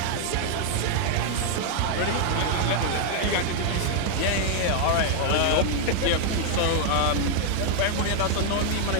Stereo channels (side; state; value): both; different; correlation 0.00